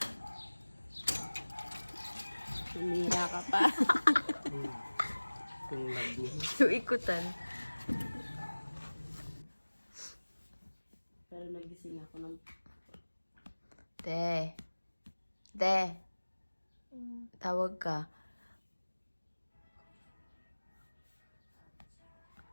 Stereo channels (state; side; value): inverted; both; correlation -1.00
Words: Tumira ka pa. Yung ikutan. Pero nagising ako ng... Te. Tawag ka.